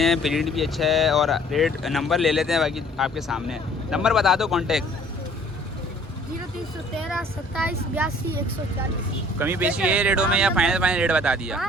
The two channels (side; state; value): both; normal; correlation 0.55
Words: है, प्रिंट भी अच्छा है। और रेट नंबर ले लेते हैं, बाकी आपके सामने है। नंबर बता दो कॉन्टेक्ट। 0313 27 82 140। कमी पेशी ये रेटों में या फाइनल रेट बता दिया?